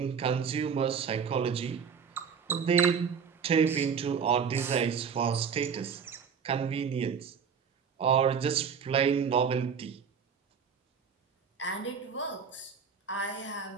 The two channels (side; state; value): left; quieter; 6.6 dB